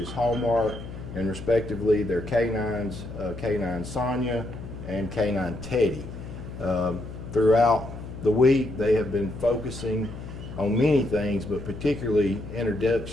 Hallmark, and respectively their K9s, K9 Sonia and K9 Teddy. Throughout the week they have been focusing on many things, but particularly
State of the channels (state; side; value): noise; left; hum, 11 dB below the sound